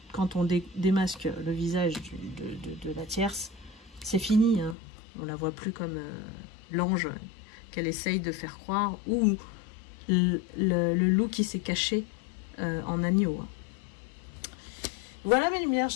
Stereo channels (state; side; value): drops out; right; at 4.8 s